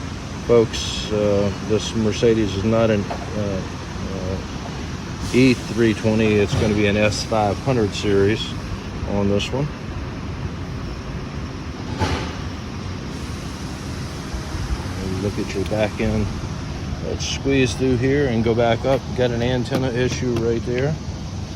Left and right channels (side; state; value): both; identical; correlation 1.00